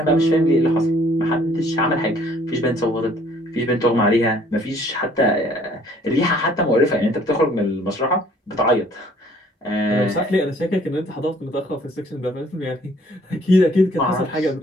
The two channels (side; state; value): both; normal; correlation 0.59